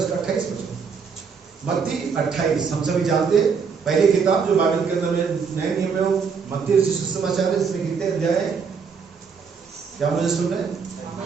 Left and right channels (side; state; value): left; quieter; 5.9 dB